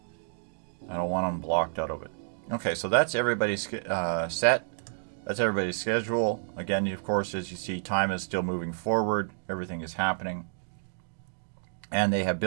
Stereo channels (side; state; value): left; silent; digital silence